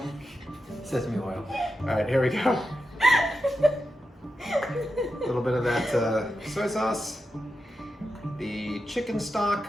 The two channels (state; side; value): normal; both; correlation 0.89